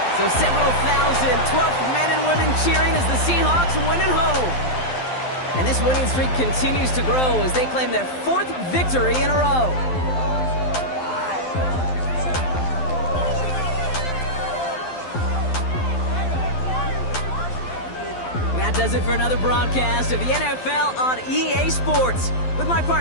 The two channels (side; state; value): right; late; 12 ms